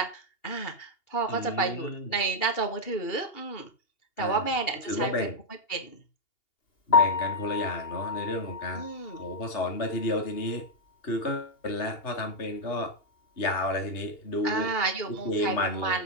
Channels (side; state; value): right; late; 2.8 ms